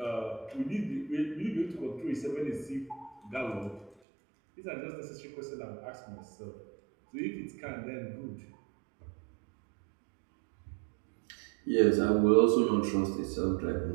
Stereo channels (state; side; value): drops out; left; at 4.0 s